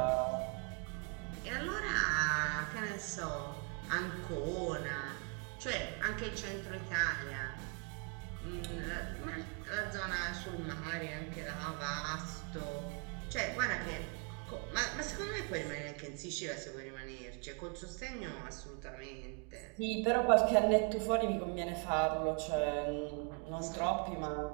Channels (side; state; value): left; quieter; 38.1 dB